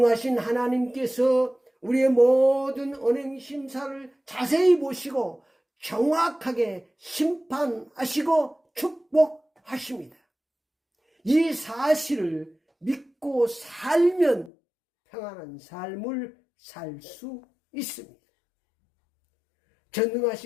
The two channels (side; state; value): right; drops out; at 14.5 s